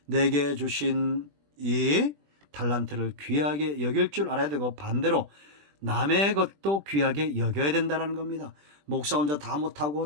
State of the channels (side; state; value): left; late; 20 ms